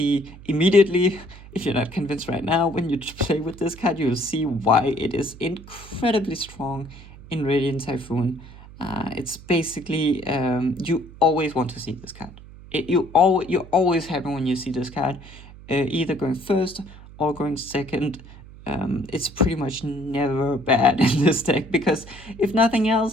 immediately, if you're not convinced right now, when you play with this card, you'll see why it is incredibly strong in Radiant Typhoon. It's basically, you always want to see this card. You're always happy when you see this card, either going first or going second. It's pretty much never bad in this deck, because if nothing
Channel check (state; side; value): noise; right; hum, 18 dB below the sound